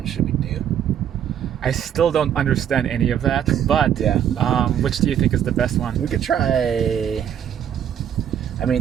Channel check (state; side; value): quieter; left; 9.5 dB